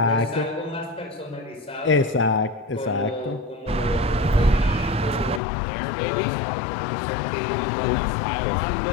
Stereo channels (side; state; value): right; drops out; at 5.4 s